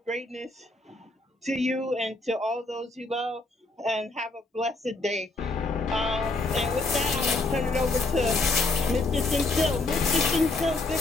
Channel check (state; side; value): quieter; right; 3.2 dB